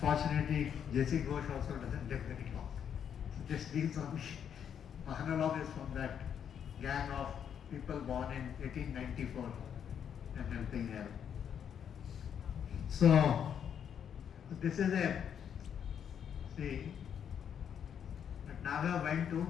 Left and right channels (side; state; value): right; quieter; 8.4 dB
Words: J.C. Ghosh also doesn't live very long. So this leaves only Mahanalavis from that gang of people born in 1894 and helping Nehru. So this is Bhatnagar went to